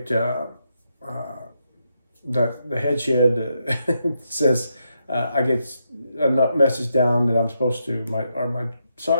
the head shed says I get a message down that I'm supposed to, my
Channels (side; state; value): both; inverted; correlation -0.82